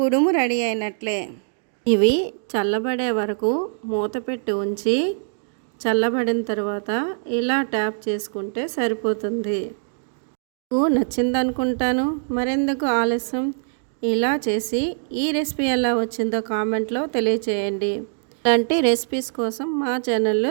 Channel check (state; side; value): silent; left; digital silence